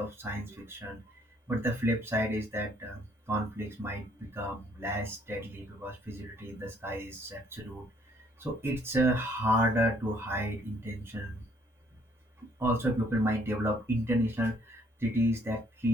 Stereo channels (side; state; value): both; normal; correlation 0.64